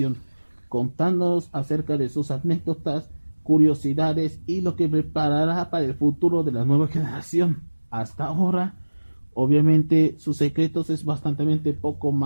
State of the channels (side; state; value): both; inverted; correlation -1.00